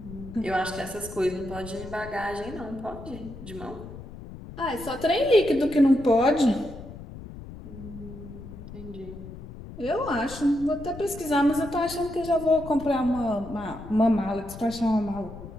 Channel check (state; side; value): noise; left; rumble, 13 dB below the sound